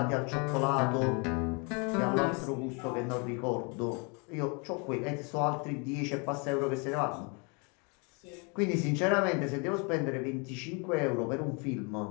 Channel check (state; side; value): quieter; right; 33.3 dB